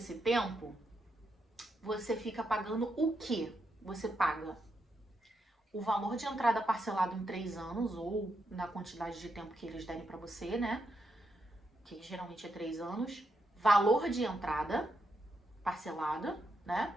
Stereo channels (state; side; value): normal; both; correlation 0.82